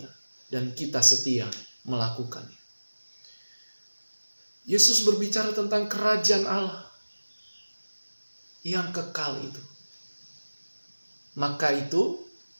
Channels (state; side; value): inverted; both; correlation -1.00